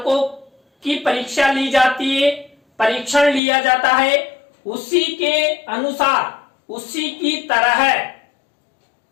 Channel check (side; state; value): right; drops out; at 3.4 s